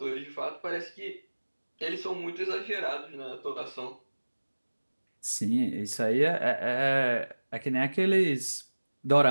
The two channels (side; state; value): both; inverted; correlation -1.00